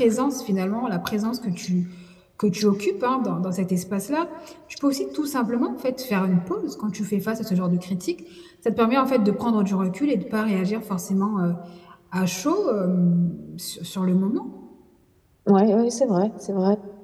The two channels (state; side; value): identical; both; correlation 1.00